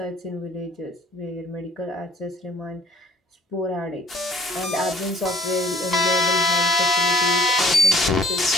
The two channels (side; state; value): both; normal; correlation 0.57